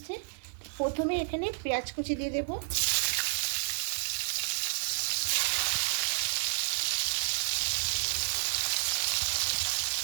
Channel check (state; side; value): silent; left; digital silence